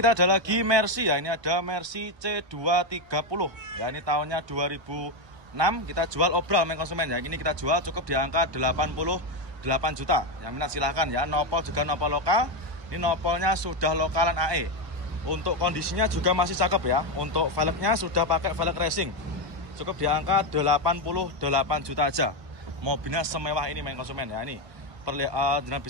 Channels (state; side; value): late; left; 1.2 ms